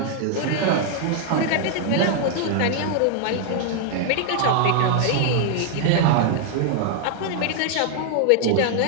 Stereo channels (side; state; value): both; different; correlation 0.00